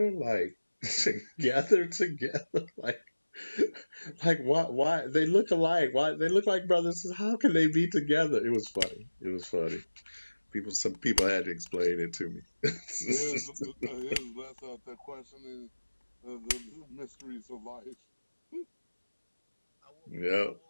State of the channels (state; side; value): inverted; both; correlation -1.00